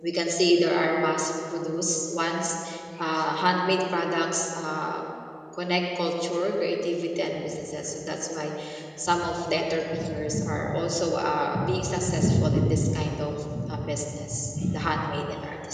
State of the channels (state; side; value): identical; both; correlation 1.00